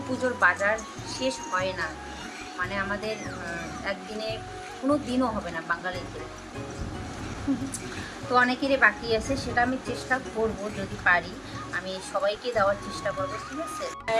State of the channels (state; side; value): identical; both; correlation 1.00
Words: পুজোর বাজার শেষ হয় না, মানে আমাদের একদিনে কোনো দিনও হবে না বাঙালিদের। তো অনেকেরই বাকি আছে, সেটা আমি চেষ্টা করব যদি পারি আমি সবাইকে দেওয়ার চেষ্টা করব, ঠিক আছে।